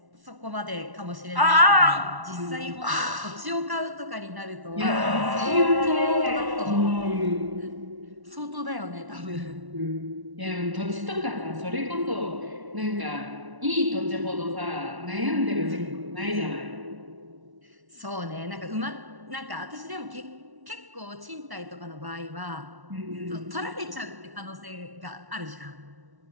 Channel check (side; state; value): left; late; 1.1 ms